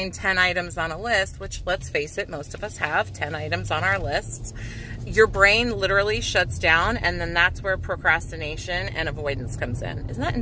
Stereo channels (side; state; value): both; identical; correlation 1.00